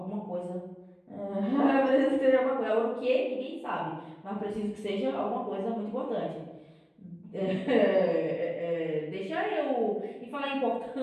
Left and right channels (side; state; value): both; identical; correlation 1.00